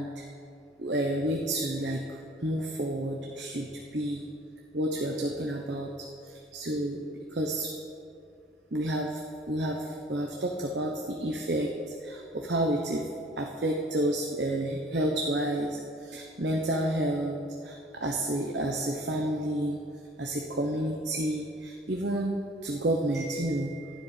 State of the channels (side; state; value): both; normal; correlation 0.50